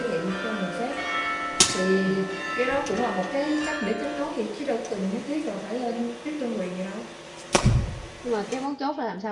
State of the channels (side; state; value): both; identical; correlation 1.00